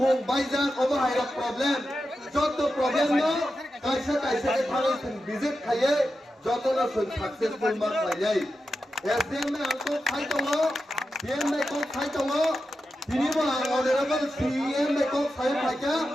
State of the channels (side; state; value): both; normal; correlation 0.90